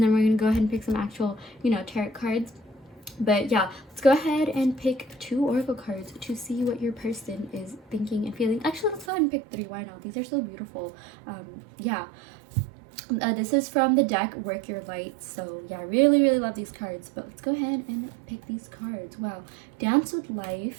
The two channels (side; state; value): left; drops out; at 9.1 s